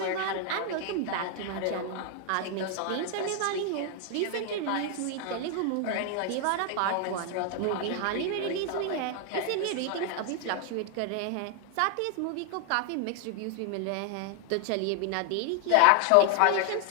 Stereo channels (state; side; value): different; both; correlation 0.00